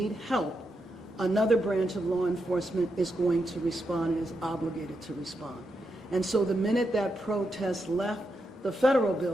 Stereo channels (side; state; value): both; normal; correlation 0.84